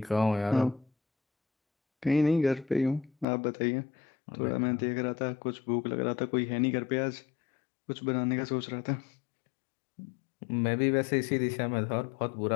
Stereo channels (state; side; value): drops out; right; at 3.2 s